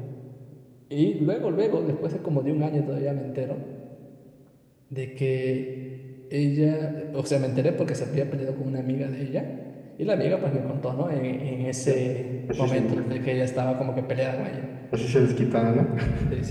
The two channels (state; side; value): identical; both; correlation 1.00